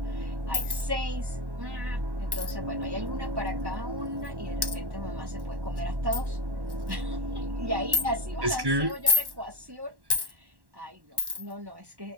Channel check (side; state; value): left; late; 1.1 ms